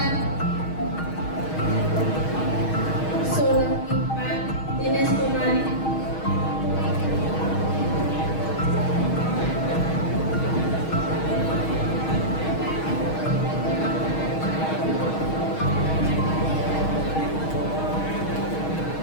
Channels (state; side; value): late; right; 6.3 ms